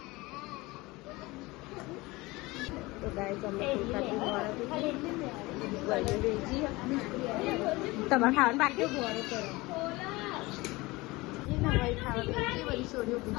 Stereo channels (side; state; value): right; quieter; 21.9 dB